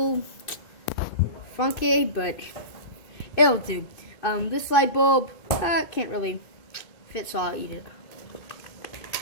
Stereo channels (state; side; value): late; right; 2.6 ms